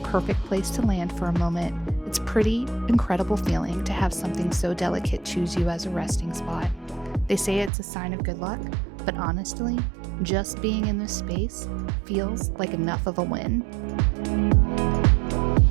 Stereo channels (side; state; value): left; drops out; at 7.7 s